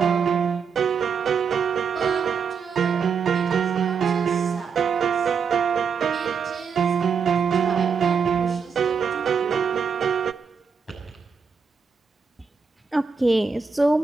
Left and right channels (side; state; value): left; quieter; 6.0 dB